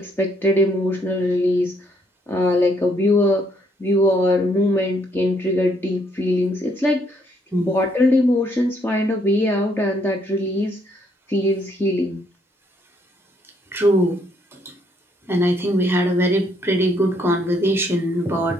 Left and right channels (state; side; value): normal; both; correlation 0.70